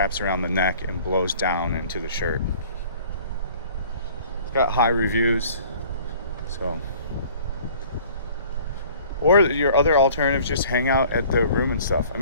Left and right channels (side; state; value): both; inverted; correlation -0.50